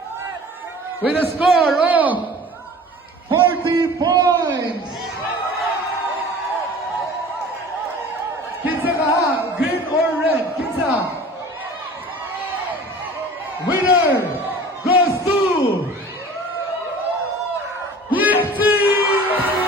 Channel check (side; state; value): both; normal; correlation 0.43